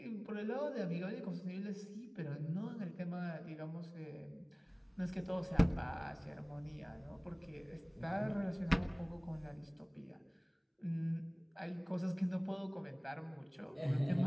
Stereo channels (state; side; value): identical; both; correlation 1.00